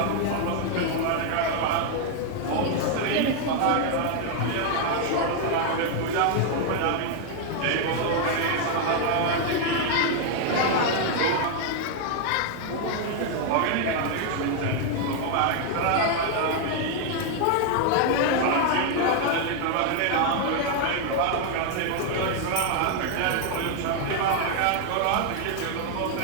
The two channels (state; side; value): different; both; correlation 0.00